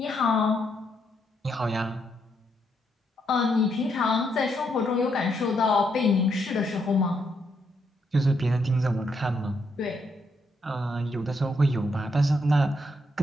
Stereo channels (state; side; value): normal; both; correlation 0.77